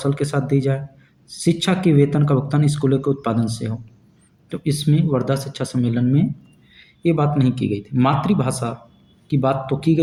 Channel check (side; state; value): both; identical; correlation 1.00